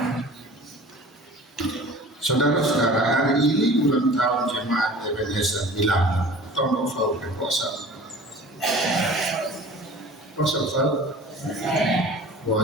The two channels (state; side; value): normal; both; correlation 0.43